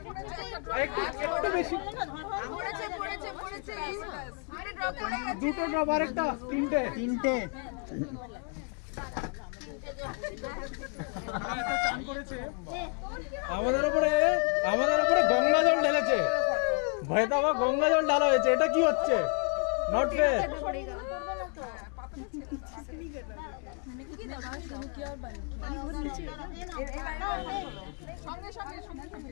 একটু বেশি পড়েছে আরে ড্রপ পড়ে গেছে দুটো ড্রপ আর একটা তিনটে চান করেছে আমাদের উপরে গঙ্গা জল ঢেলেছে ভয়দাবা গঙ্গা জল ঢালা হয়েছে এটা কি হচ্ছে নট ফেয়ার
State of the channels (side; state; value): right; quieter; 39.2 dB